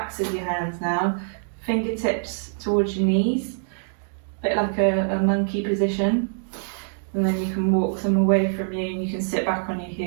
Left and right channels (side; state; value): left; silent; digital silence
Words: of your hands now, fingertips towards your knees, a bit like a monkey position, and then you can walk them away from you and you can sit back on your